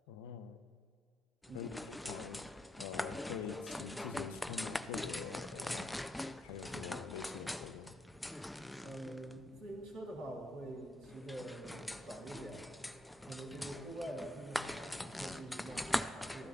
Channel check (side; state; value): both; normal; correlation 0.80